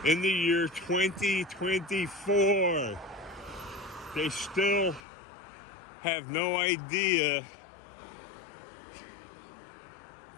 In the year 2024, they still have no idea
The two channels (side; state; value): right; drops out; at 5.0 s